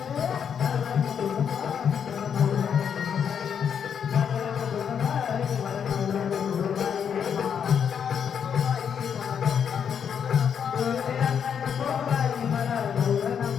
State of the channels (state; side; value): quieter; right; 7.7 dB